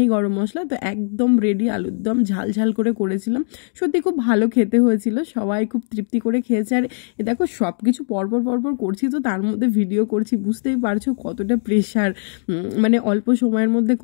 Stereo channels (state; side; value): silent; right; digital silence